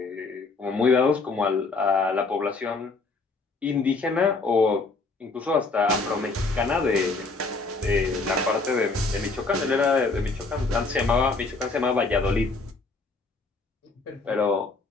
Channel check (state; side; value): quieter; right; 3.8 dB